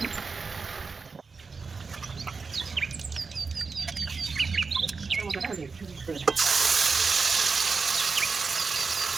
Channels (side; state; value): left; quieter; 4.7 dB